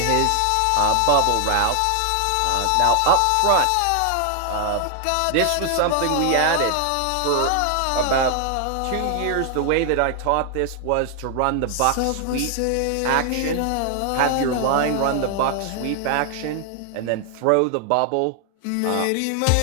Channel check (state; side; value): different; both; correlation 0.00